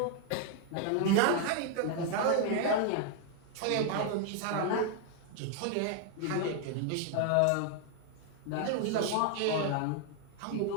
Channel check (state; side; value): different; both; correlation 0.00